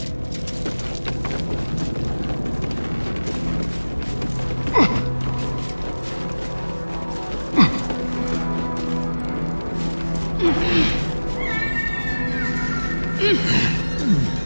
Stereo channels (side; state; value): both; inverted; correlation -1.00